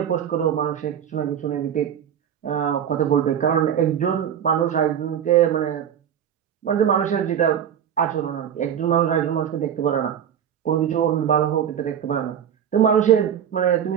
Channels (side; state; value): left; quieter; 9.1 dB